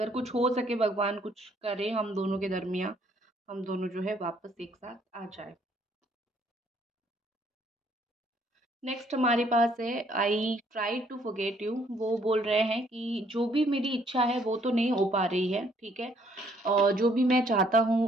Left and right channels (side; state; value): both; normal; correlation 0.66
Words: कुछ हो सके, भगवान कुछ करे हम दोनों के दरमियाँ, हम दोनों जो है वापस एक साथ आ जाएँ। नेक्स्ट हमारे पास है, I try to forget you. वो बोल रहे हैं कि जो भी मेरी इच्छा है वो तो नहीं हो पा रही है। ठीक है, और जो भी मैं चाहता